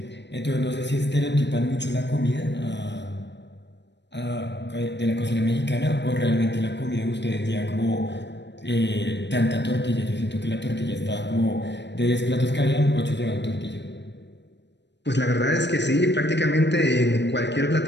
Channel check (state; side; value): late; right; 0.51 ms